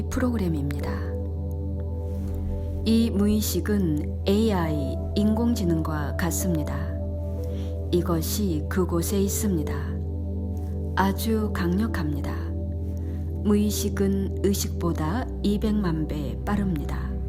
프로그램입니다. 이 무의식은 AI, 인공지능과 같습니다. 이것이 그곳에 있습니다. 아주 강력합니다. 무의식은 의식보다 200만 배 빠릅니다.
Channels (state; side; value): identical; both; correlation 1.00